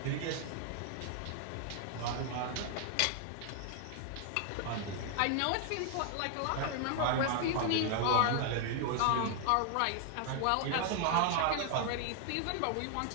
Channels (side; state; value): both; different; correlation 0.00